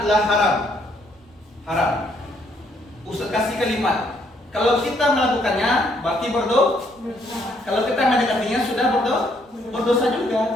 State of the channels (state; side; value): normal; both; correlation 0.69